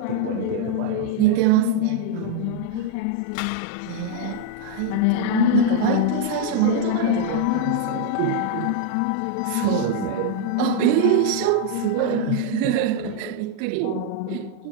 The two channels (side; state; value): both; different; correlation 0.00